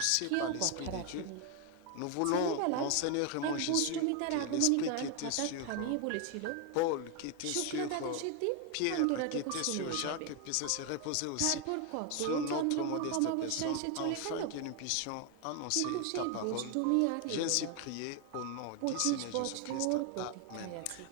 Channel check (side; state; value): both; different; correlation 0.01